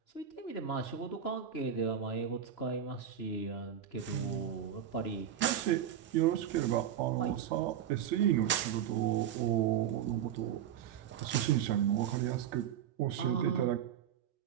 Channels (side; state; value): left; quieter; 9.5 dB